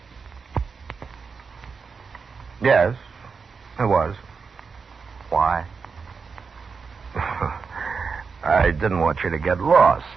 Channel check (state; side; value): quieter; left; 5.2 dB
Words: Yes, it was. Why? I didn't want you to get lost.